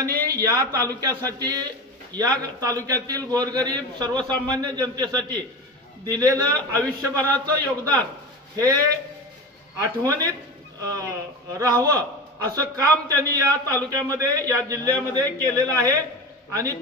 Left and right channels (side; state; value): both; normal; correlation 0.28